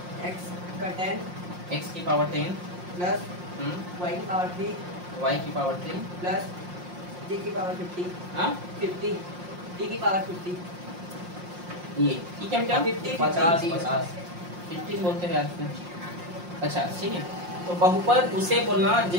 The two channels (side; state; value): left; late; 5.6 ms